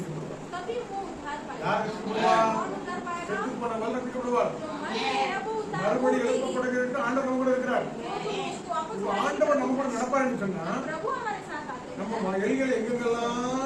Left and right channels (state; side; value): identical; both; correlation 1.00